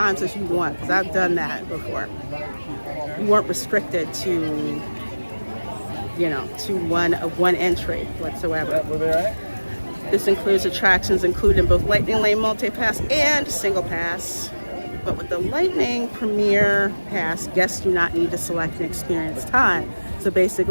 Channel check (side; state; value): both; inverted; correlation -1.00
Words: as you want, because I've done that before. You weren't restricted to, you know, to one entry whatsoever. This includes attractions including both Lightning Lane Multi-Pass and Single Pass. But with the Lightning Premiere Pass, guests do not need to select an experience time. So